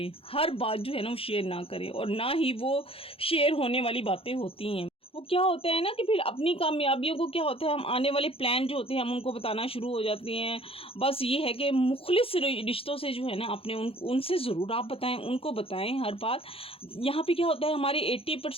हर बात जो है ना वो शेयर ना करें, और ना ही वो शेयर होने वाली बातें होती हैं। वो क्या होता है ना कि फिर अपनी कामयाबियों को क्या होता है, हम आने वाले प्लान जो होते हैं हम उनको बताना शुरू हो जाते हैं। बस ये है कि मुखलिस रिश्तों से जो है ना अपने उनसे ज़रूर आप बताएं, उनको बताएं हर बात। यहाँ पे क्या होता है, हमारे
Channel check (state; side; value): late; right; 0.27 ms